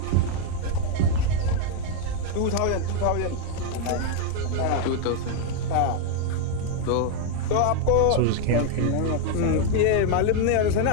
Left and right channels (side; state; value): both; different; correlation 0.01